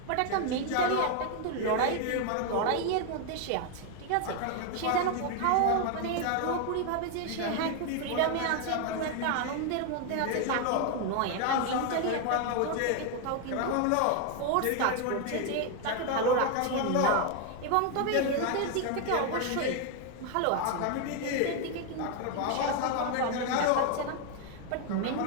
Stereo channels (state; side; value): different; both; correlation 0.01